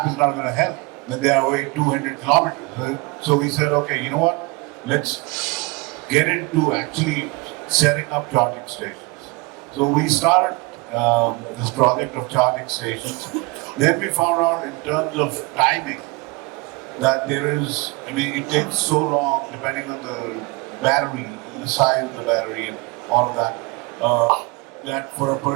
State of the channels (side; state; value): left; quieter; 26.5 dB